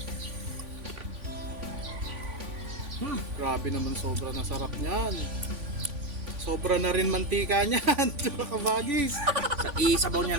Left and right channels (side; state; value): left; late; 3.5 ms